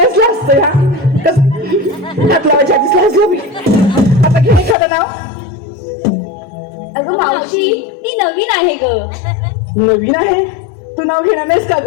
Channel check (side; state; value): right; drops out; at 4.8 s